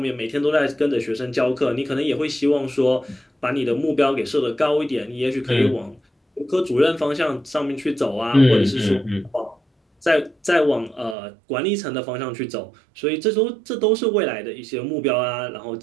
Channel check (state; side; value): drops out; left; at 11.2 s